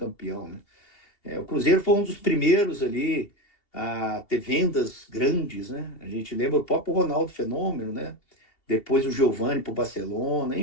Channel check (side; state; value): right; late; 2.8 ms